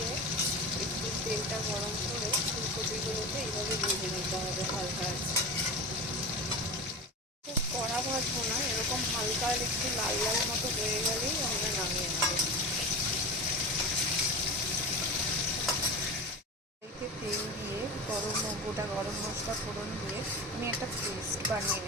একটু তেলটা গরম করে ফুলকপিগুলোকে এইভাবে ভেজে নিতে হবে হালকা আছে। খুব কড়া ভাজবো না, এরকম হালকা একটু লাল লাল মতো হয়ে গেলেই আমরা নামিয়ে নেব। তেল দিয়ে গোটা গরম মশলা ফোড়ন দিয়ে আমি একটা পেস্ট বানিয়ে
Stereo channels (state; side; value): normal; both; correlation 0.28